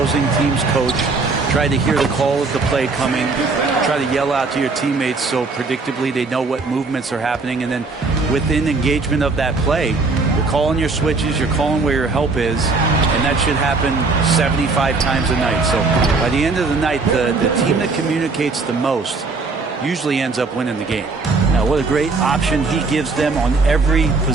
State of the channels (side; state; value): left; quieter; 4.0 dB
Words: team's coach, try to hear the call of the play coming, try to yell out to your teammates so predictably they know what movements are happening. And then within engagement of that play, you're calling your switches, you're calling where your help is, and that should happen 75 times a night. So by the end of the night, the team that communicates the most usually ends up winning the game. Now, what a great option he gives them on every